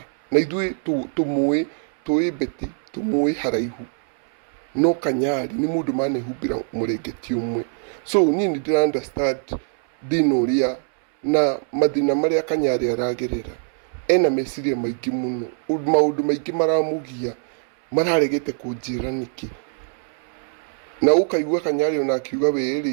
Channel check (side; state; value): left; silent; 64 dB below the other